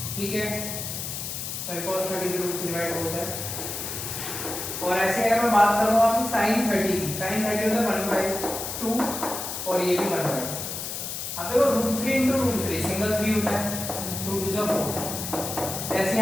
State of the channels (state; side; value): noise; left; hiss, 5 dB below the sound